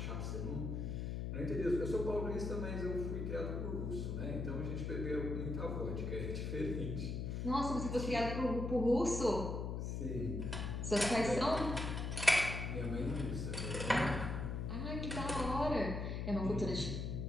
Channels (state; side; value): noise; left; hum, 2 dB below the sound